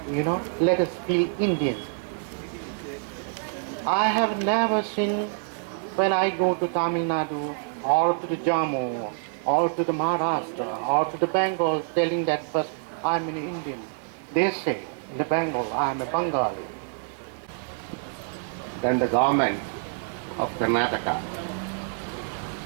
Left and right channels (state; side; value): silent; left; 61 dB below the other